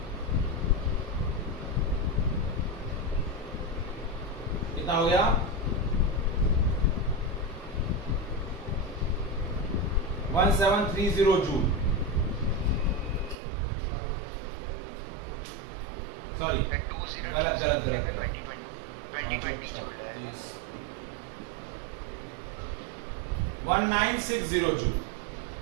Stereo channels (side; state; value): left; drops out; at 13.4 s